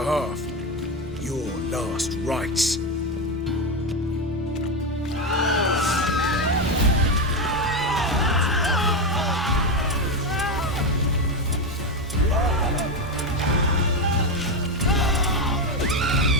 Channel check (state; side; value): normal; both; correlation 0.11